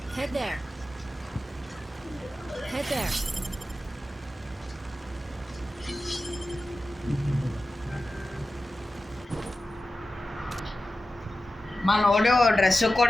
Head there. Head there. మనోడు డ్రెస్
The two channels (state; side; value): normal; both; correlation 0.94